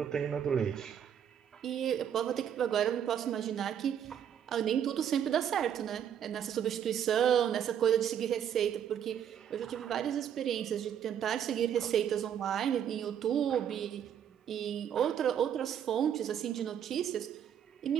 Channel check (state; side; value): quieter; left; 9.1 dB